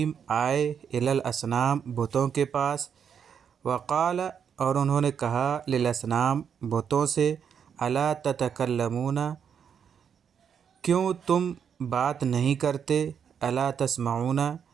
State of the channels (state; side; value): quieter; left; 7.5 dB